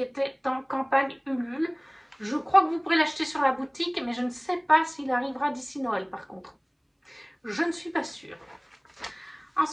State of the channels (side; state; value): both; identical; correlation 1.00